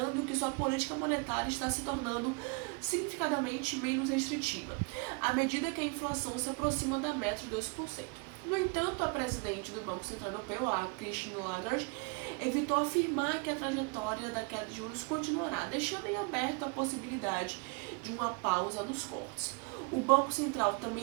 que sua política monetária está se tornando significativamente menos restritiva, à medida que a inflação se aproxima da meta de 2%. No entanto, a presidente do Banco Central Europeu, a Christine Lagarde, evitou afirmar que a trajetória da queda de juros continuará, deixando em aberto a possibilidade de uma pausa nos cortes. O Banco Central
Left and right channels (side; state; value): left; quieter; 31.8 dB